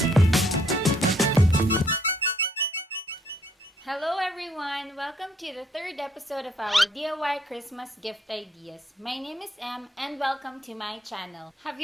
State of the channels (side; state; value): both; normal; correlation 0.67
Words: Hello everyone! Welcome to the third episode of our DIY Christmas gift ideas. My name is Em and welcome to my channel. Have